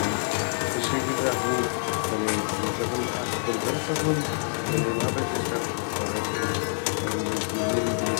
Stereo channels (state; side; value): silent; right; digital silence